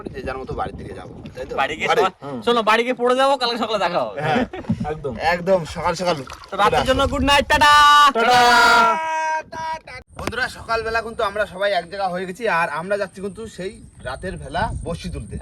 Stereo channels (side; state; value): both; identical; correlation 1.00